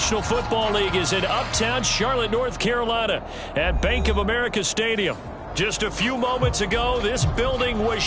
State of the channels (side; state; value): both; identical; correlation 1.00